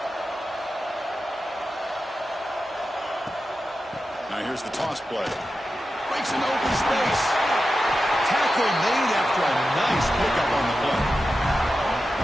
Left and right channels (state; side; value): normal; both; correlation 0.92